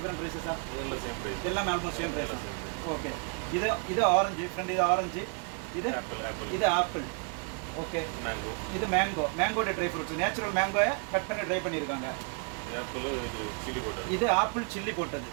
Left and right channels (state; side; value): quieter; left; 38.2 dB